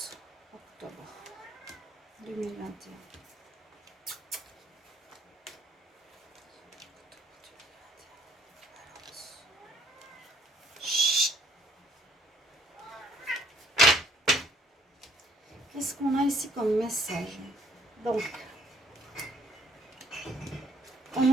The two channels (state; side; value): normal; both; correlation 0.63